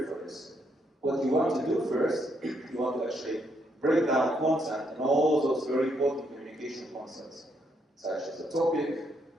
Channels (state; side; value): normal; both; correlation 0.75